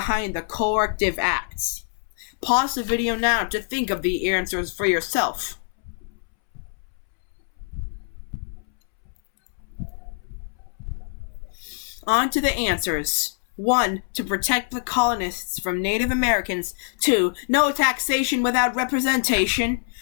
the corrective acts? Pause the video now to think of the answers for yourself. On to the answers. 1. To protect the colonists from Native Americans. 2. No taxation without representation.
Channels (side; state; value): right; silent; 62 dB below the other